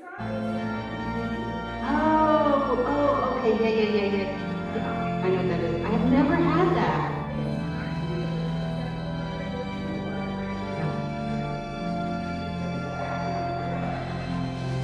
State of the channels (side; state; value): both; identical; correlation 1.00